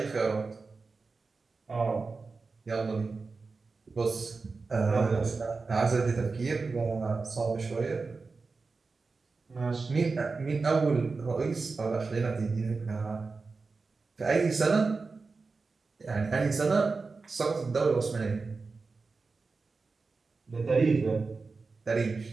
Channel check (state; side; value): quieter; left; 4.2 dB